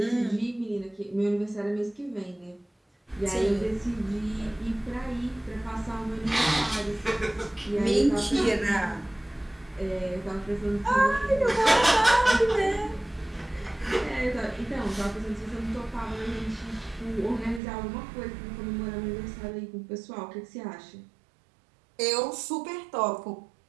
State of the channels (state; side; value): drops out; left; at 17.6 s